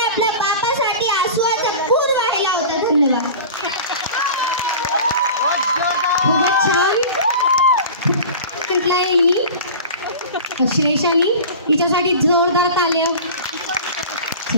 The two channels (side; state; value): both; inverted; correlation -0.36